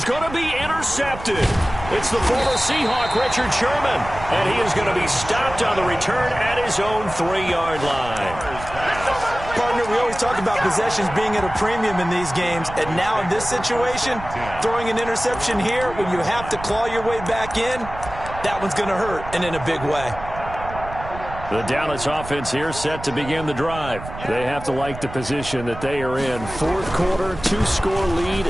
going to be intercepted. It's the former Seahawk, Richard Sherman. And he is going to be stopped on the return at his own 3-yard line. Partner, we always talk about possessions being at a premium in these games. And now in this situation, throwing an interception here when you have to claw your way back in, that one's going to hurt, and in a big way. The Dallas offense here set to begin the drive. They have to like the position that they are in. 4th quarter, 2-score lead,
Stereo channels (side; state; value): right; noise; rumble, 12 dB below the sound